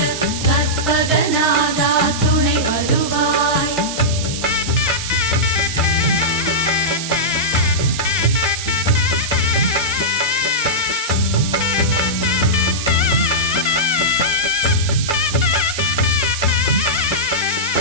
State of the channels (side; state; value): right; noise; hiss, 6 dB below the sound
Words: கற்பகநாதா துணை வருவாய்